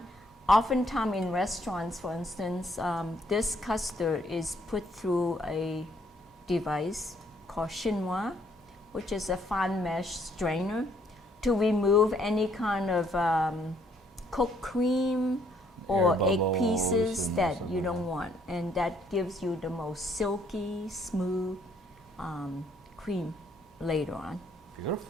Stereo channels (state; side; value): normal; both; correlation 0.67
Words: oftentimes in restaurants, for instance, this custard is put through a device called chinois, which is a fine mesh strainer, to remove any kind of cooked cream or egg pieces that you don't want, and that gives you the most silky, smooth cream later on.